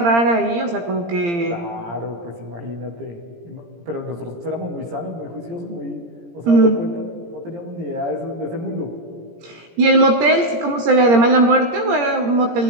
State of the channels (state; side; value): late; left; 17 ms